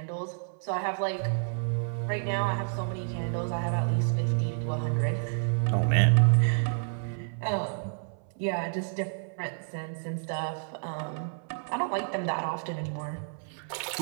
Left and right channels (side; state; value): left; silent; 58 dB below the other